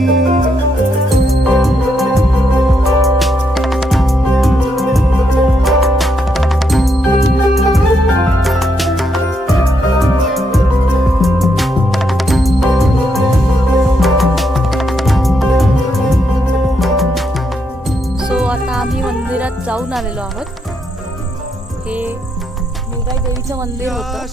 जाऊन आलेलो आहोत. हे मेघाई देवीचं मंदिर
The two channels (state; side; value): normal; both; correlation 0.78